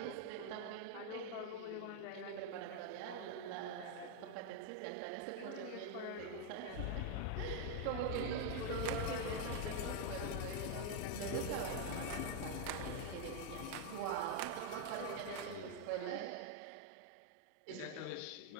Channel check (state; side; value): different; both; correlation 0.01